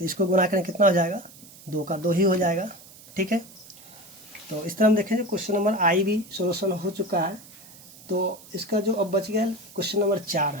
इसको गुना करें कितना हो जाएगा 2 का 2 ही हो जाएगा, ठीक है। तो इस तरह हम देखेंगे क्वेश्चन नंबर आई भी सोल्यूशन हो चुका है। तो इसका जो अब बच गया क्वेश्चन नंबर 4,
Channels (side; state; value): right; noise; hiss, 21 dB below the sound